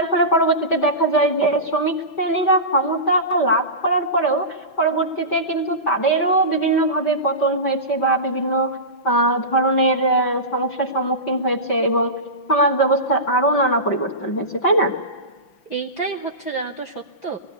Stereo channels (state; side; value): late; right; 6.0 ms